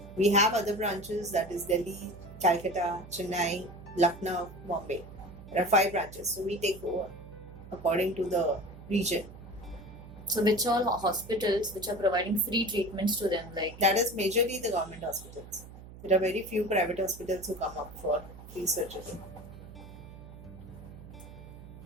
We have other branches, that is Delhi, Calcutta, Chennai, Lucknow, Bombay. There are 5 branches, so we take over according to the region. So which all hospitals which are providing free treatments to them, like? That is majorly the government hospitals. There are very few private hospitals who come up for free surgery.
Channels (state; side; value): noise; right; hum, 16 dB below the sound